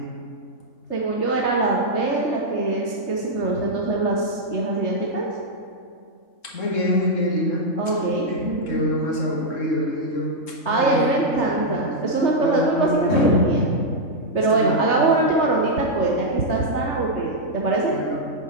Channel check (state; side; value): late; right; 3.7 ms